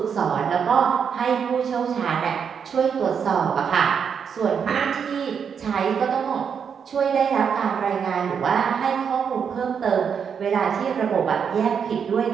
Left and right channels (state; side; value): quieter; left; 7.0 dB